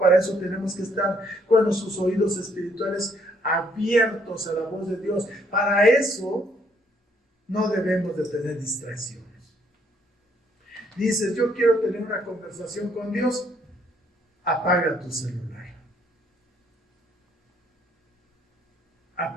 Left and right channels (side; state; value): both; normal; correlation 0.68